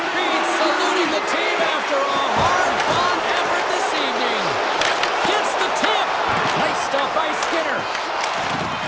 feet, saluting the team after a hard-fought effort this evening. Gets the tip. Nice stop by Skinner.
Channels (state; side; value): identical; both; correlation 1.00